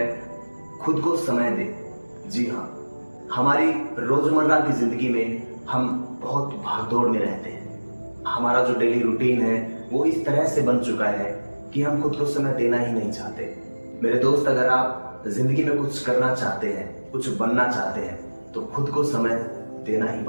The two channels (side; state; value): both; inverted; correlation -1.00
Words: खुद को समय दे। जी हाँ, हमारी रोजमर्रा की जिंदगी में हम बहुत भागदौड़ में रहते हैं। हमारा जो डेली रूटीन है वो इस तरह से बन चुका है कि हम खुद को समय देना ही नहीं चाहते। मेरे दोस्त, अगर आप जिंदगी में कुछ करना चाहते हैं, कुछ बनना चाहते हैं, तो खुद को समय देना ही